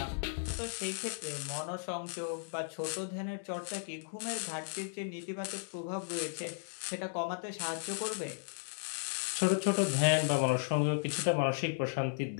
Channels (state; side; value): silent; right; digital silence